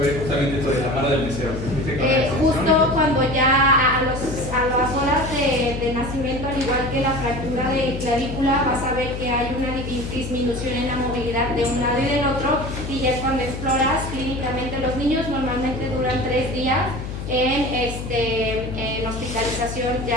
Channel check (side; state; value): left; noise; hum, 7 dB below the sound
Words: ver justamente esto de la mano del mesero? Justo cuando ya a las horas de nacimiento, al igual que la fractura de clavícula, vas a ver que hay una disminución en la movilidad de un lado y del otro, y ya es cuando exploras clínicamente. Los niños normalmente duran 3 días en hospitalización